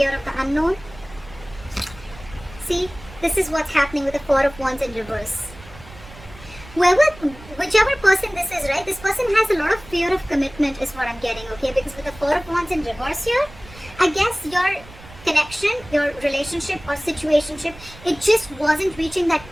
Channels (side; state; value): right; noise; rumble, 19 dB below the sound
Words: of the unknown. See, this is what's happening with the Four of Wands in reverse. Whichever person this is, right, this person has a lot of fear of commitment is what I'm getting, okay? Because with the Four of Wands in reverse here, I guess your connection, your relationship or situationship, it just wasn't reaching that